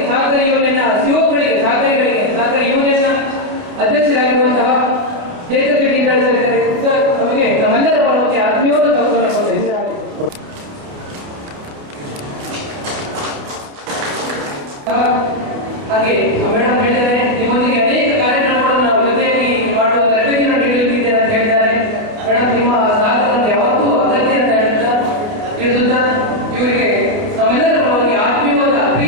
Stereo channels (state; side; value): late; left; 29 ms